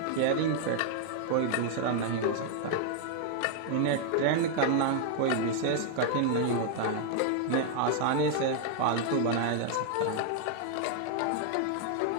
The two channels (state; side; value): different; both; correlation 0.00